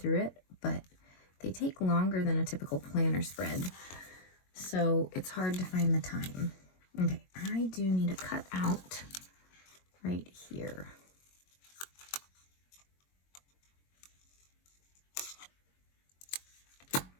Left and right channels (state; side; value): late; right; 22 ms